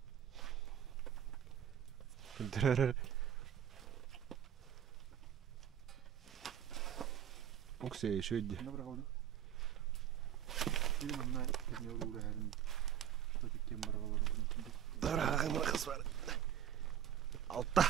Дәрі. Okey, şöyle. Ne bırakalım? Benim anne ne olur her gün. Tabii ki bırakalım. Bırakalım kız var. Altta.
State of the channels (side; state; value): left; quieter; 9.7 dB